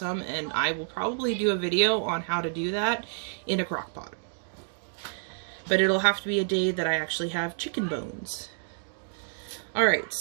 and I will probably do a video on how to do that in a crock pot. But it'll have to be a day that I actually have chicken bones. Alright,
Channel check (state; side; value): silent; left; digital silence